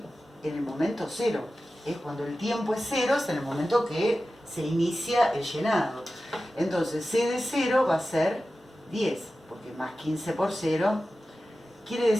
en el momento cero. Es cuando el tiempo es cero, es en el momento que se inicia el llenado. Entonces, C de 0 va a ser 10, porque más 15 por 0 quiere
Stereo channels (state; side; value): normal; both; correlation 0.94